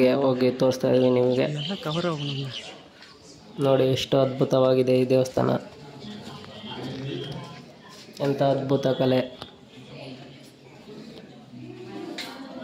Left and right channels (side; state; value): both; identical; correlation 1.00